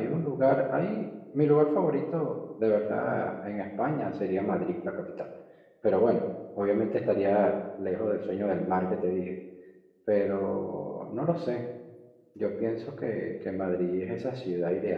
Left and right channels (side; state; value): both; identical; correlation 1.00